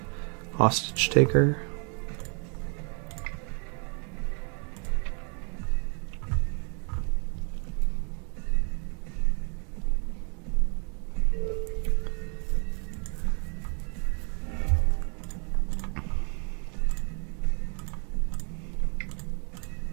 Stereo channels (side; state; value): left; quieter; 37.3 dB